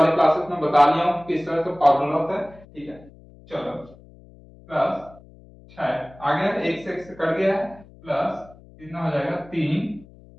क्लासेस में बता लिया हूँ किस तरह से फॉर्मूला होता है। ठीक है, चलो प्लस 6 आ गया, एक से कट गया है, प्लस कितना हो जाएगा 3।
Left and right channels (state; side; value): noise; left; hum, 23 dB below the sound